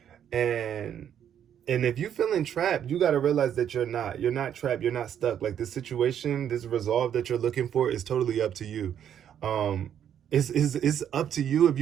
and if you feel entrapped, you got to realize that you're not trapped, you're not stuck. Like, this situation, this resolve that you're looking for is totally up to you. It's up to you if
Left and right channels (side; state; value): left; quieter; 9.5 dB